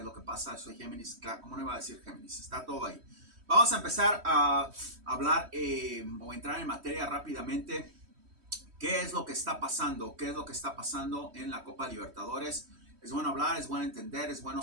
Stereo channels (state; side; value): late; left; 3.1 ms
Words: lo que pasa. Soy Géminis, claro, ¿cómo no iba a decir Géminis? Está todo ahí. Vamos a empezar a hablar o entrar en materia rápidamente. ¿Qué es lo que está pasando? ¿Qué es lo que está pasando en la Copa Libertadores? Es bueno hablar, es bueno entender, es bueno